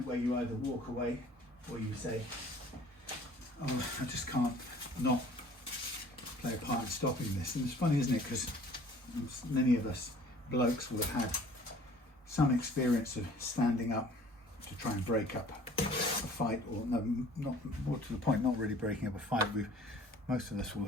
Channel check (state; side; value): normal; both; correlation 0.51